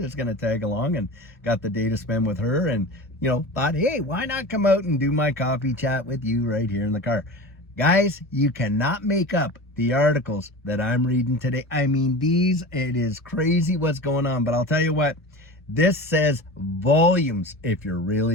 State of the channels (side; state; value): both; normal; correlation 0.32